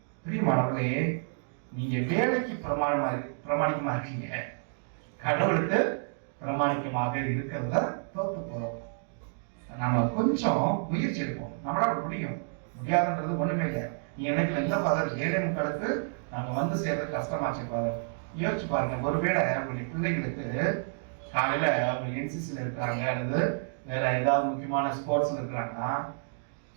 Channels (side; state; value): left; silent; digital silence